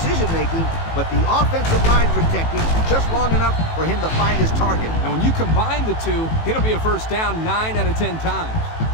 but the offensive line protected just long enough for him to find his target. And when you combine the two, it'll be a first down 9 out of 10 times.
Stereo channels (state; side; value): late; right; 18 ms